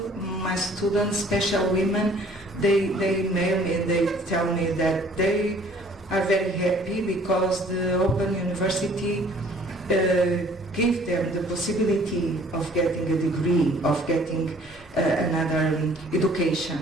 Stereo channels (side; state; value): both; normal; correlation 0.55